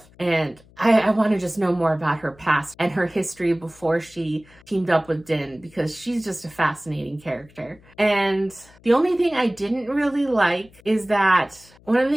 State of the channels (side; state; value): left; noise; hum, 27 dB below the sound